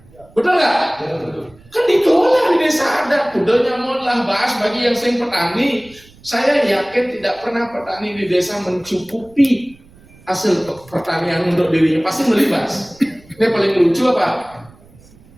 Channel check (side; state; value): right; noise; rumble, 26 dB below the sound